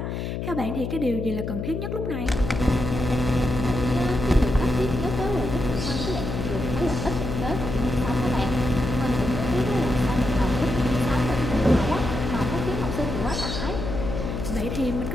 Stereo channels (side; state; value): left; noise; hum, 4 dB below the sound